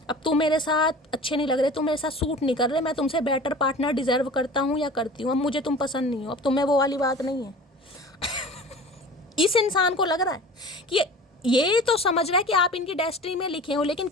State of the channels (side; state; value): both; normal; correlation 0.39